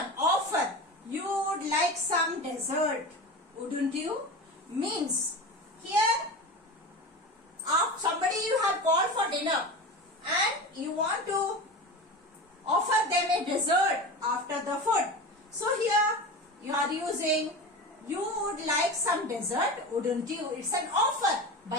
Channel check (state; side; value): normal; both; correlation 0.28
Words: offer. You would like some dessert. Wouldn't you? Means, here, somebody you have called for dinner and you want to offer them a dessert after the food. So, here you are using you would like some dessert, wouldn't you? It's an offer